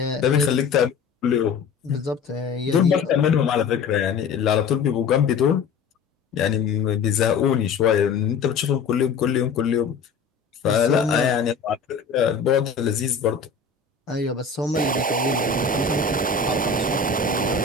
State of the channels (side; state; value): right; quieter; 5.3 dB